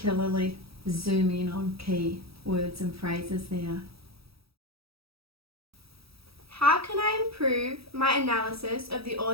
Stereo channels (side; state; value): left; late; 0.77 ms